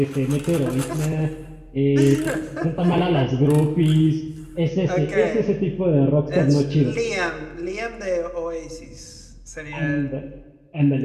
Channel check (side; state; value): both; identical; correlation 1.00